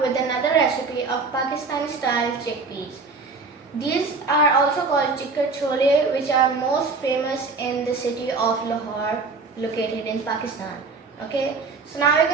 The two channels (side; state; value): left; quieter; 4.2 dB